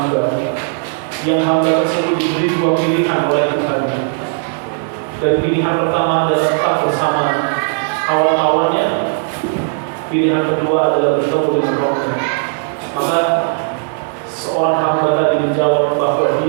yang hamba tersebut diberi dua pilihan oleh Tuhan. Dan pilihan pertama adalah tetap bersama kawan-kawannya. Pilihan kedua adalah bertemu dengan Rabbnya. Maka seorang hamba tadi menjawab bahwa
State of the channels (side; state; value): left; silent; 69 dB below the other